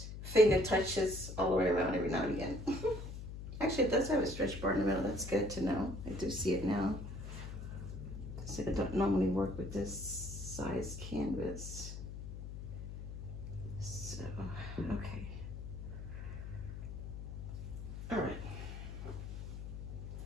finger touches all the way around every now and again. Actually, it does have a stretch bar in the middle. That's good to know. I do see it now. So I don't normally work with this size canvas. So, okay. All right.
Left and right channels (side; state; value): left; noise; hum, 8 dB below the sound